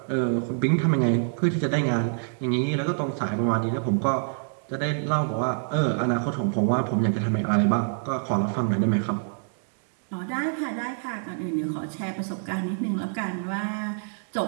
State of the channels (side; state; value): left; silent; digital silence